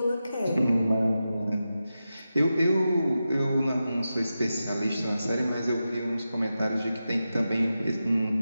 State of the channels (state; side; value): inverted; both; correlation -0.91